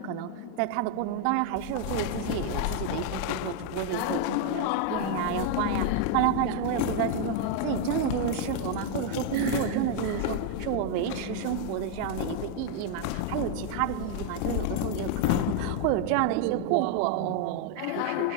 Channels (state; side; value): different; both; correlation 0.00